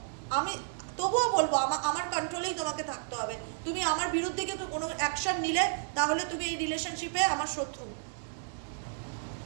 আমি তবুও বলবো আমার কন্ট্রোলেই তোমাকে থাকতে হবে। তুমি আমার বিরুদ্ধে কিন্তু কোনো অ্যাকশন নিলে তাহলে তুমি এই রিলেশনশিপে আমার শত্রু।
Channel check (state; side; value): silent; left; digital silence